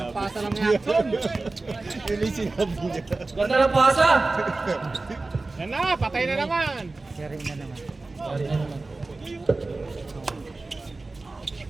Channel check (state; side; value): quieter; left; 3.4 dB